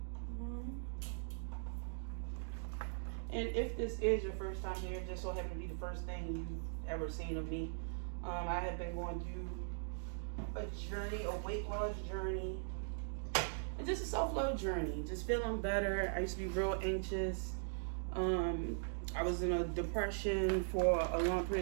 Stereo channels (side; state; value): left; silent; digital silence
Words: And if this is your first time here, just so happened to be the first thing you've ever seen of me, I have been going through a journey, a weight loss journey. And just a self-love journey, just feeling better. I used to be real anxious. I was in a depression for a long